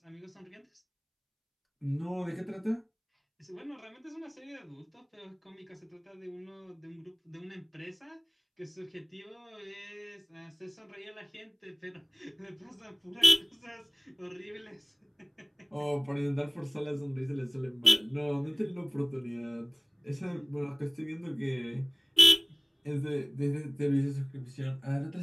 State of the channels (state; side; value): identical; both; correlation 1.00